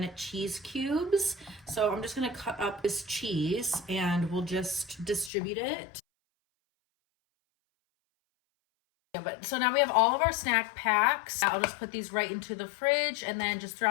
cheese cubes. So I'm just gonna cut up this cheese and we'll just distribute it. But so now we have all of our snack packs. I'll just put these right into the fridge, and then just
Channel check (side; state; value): right; drops out; at 5.3 s